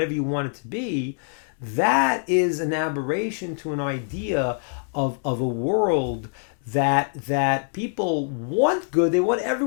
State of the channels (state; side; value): silent; right; 62 dB below the other